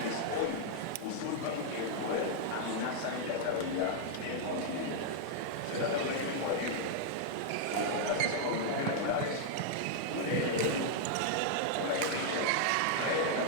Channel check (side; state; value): both; different; correlation -0.01